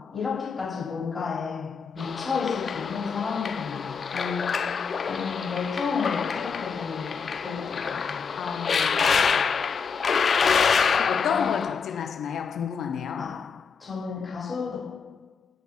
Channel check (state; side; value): quieter; right; 5.9 dB